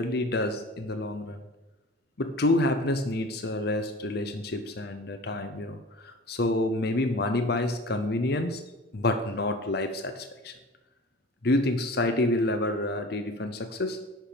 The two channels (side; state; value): both; normal; correlation 0.39